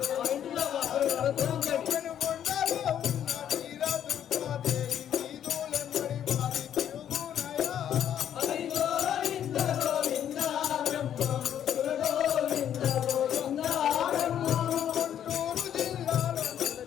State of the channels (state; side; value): quieter; right; 9.9 dB